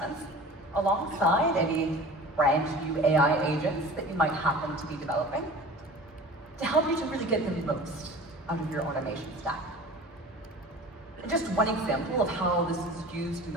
alongside any brand new AI agents that you might happen to be developing to help you to really get the most out of your automation stack. And just one example of how this is used in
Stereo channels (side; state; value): both; normal; correlation 0.40